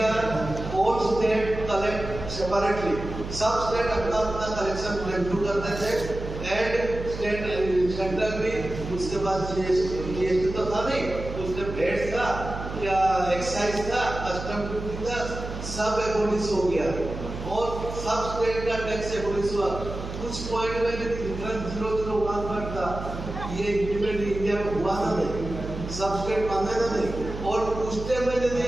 all state collect separately. सब स्टेट अपना कलेक्शन रेवेन्यू करते थे, एंड स्टेट सेंट्रल भी उसके बाद जीएसटी तो था नहीं, उसने वेट था या एक्साइज था, कस्टम ड्यूटी था, सब एबोलिश हो गया और सब स्टेट का टैक्स एबोलिश हुआ। कुछ पॉइंट में डिफरेंस 001 था, ये इम्प्लीमेंट इंडिया में हुआ था नहीं, सब स्टेट मांगे ना नहीं। और उस टाइम में यदि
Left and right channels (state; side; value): noise; right; hum, 8 dB below the sound